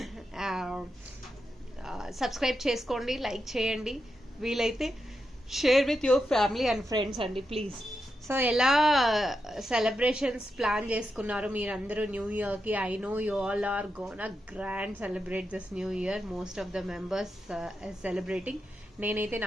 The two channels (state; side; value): normal; both; correlation 0.87